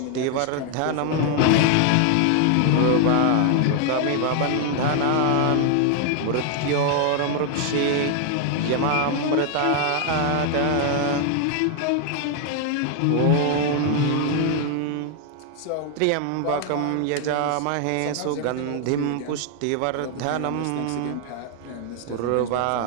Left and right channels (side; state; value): both; different; correlation 0.00